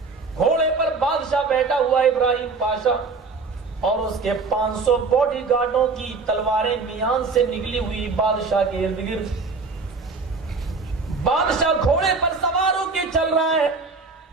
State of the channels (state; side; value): quieter; left; 4.3 dB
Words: گھوڑے پر بادشاہ بیٹھا ہوا ابراہیم پاشا اور اس کے 500 باڈی گارڈوں کی تلواریں میان سے نکلی ہوئی بادشاہ کے ارد گرد. بادشاہ گھوڑے پر سوار ہو کے چل رہا ہے,